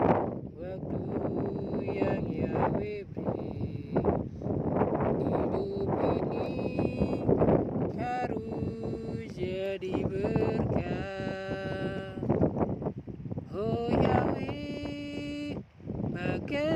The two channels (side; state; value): both; identical; correlation 1.00